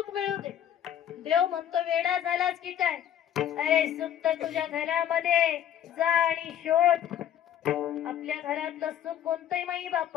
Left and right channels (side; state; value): right; quieter; 10.4 dB